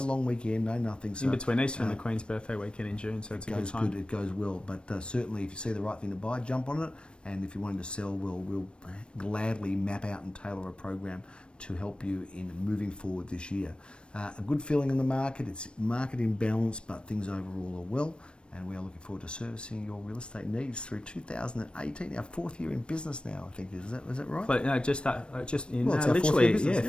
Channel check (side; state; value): right; late; 0.056 ms